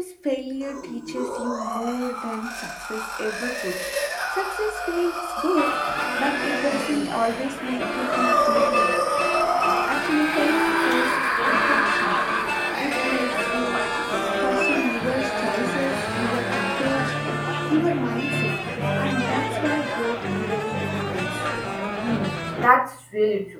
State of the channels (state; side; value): identical; both; correlation 1.00